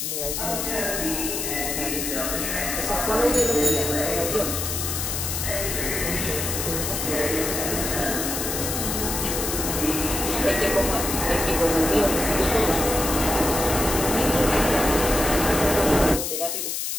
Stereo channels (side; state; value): left; noise; hiss, 2 dB below the sound